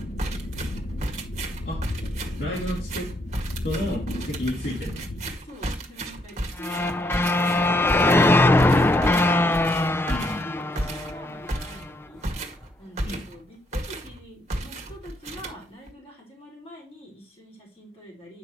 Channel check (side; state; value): both; normal; correlation 0.72